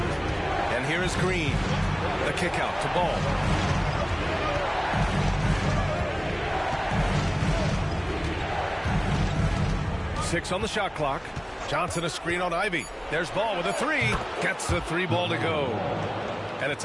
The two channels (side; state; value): both; identical; correlation 1.00